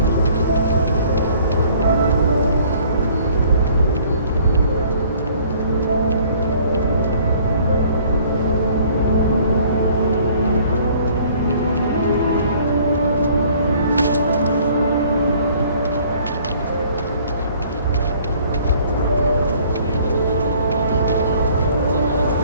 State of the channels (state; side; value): inverted; both; correlation -0.56